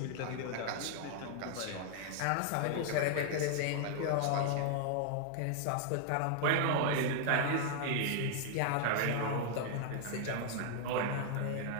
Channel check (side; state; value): both; different; correlation 0.00